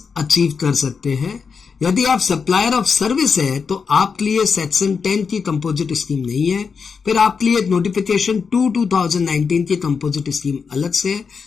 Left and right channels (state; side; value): quieter; right; 5.6 dB